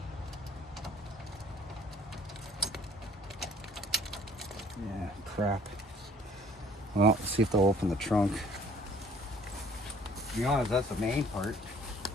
Yeah, crap. Well, let's see if they'll open the trunk. To be honest, that's the main part.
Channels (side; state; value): both; normal; correlation 0.56